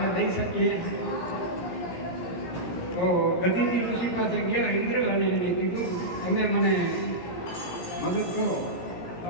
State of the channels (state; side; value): late; right; 17 ms